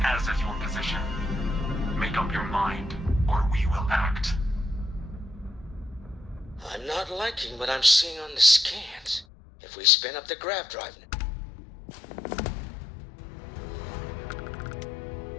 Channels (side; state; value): right; drops out; at 9.2 s